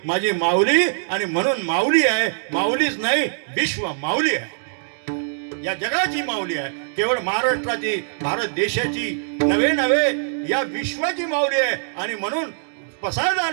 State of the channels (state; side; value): silent; left; digital silence